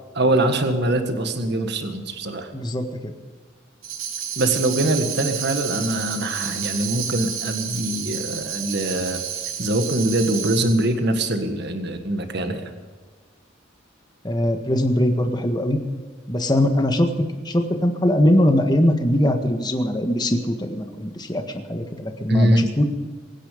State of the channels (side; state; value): both; normal; correlation 0.66